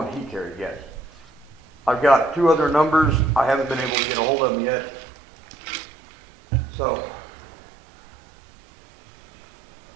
he carried, yes. I've got 2 other numbers. I haven't been able to get a hold of them yet. So,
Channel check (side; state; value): left; drops out; at 3.9 s